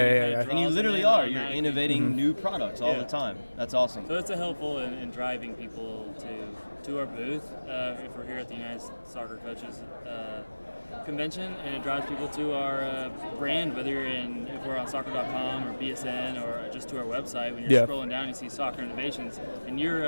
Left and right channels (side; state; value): both; inverted; correlation -1.00